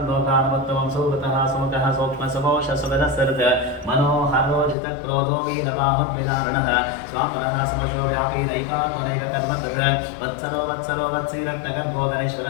सुहृतः सुमुखः सूक्ष्मसुकोशसुगदसर्ग मनोहरोजितक्रोधो वीरबाहुर्विदारणः स्वापरः समशो व्यापी नैकात्मनैककर्मतः वत्सरो वत्सरो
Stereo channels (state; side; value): drops out; right; at 4.8 s